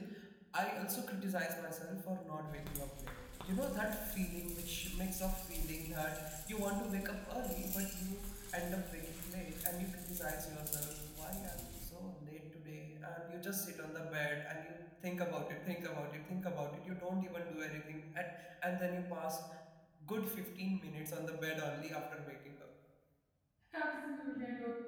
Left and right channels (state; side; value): identical; both; correlation 1.00